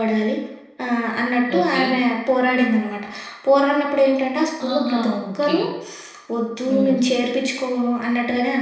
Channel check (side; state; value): both; identical; correlation 1.00